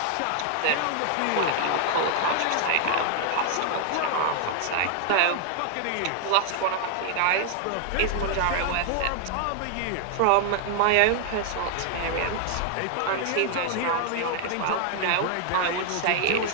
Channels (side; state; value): both; different; correlation 0.00